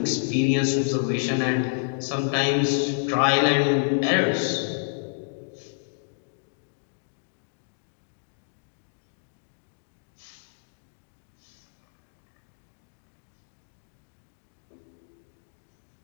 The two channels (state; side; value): silent; right; digital silence